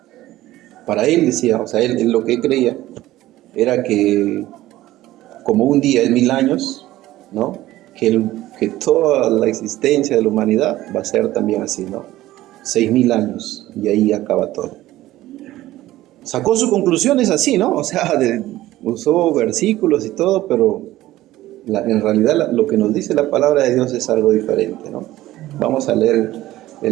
para él decía, o sea, él lo que creía era que como un día es 1000 años, ¿no? Que toda la existencia de la humanidad va a ser también así, ¿no? 6000 años y ahí acaba todo. Sacó sus conclusiones así, ¿no? O sea, usó versículos y todo, pero en realidad lo que nos dice la palabra de Dios es algo diferente, ¿no? Vamos a leer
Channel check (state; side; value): quieter; left; 15.7 dB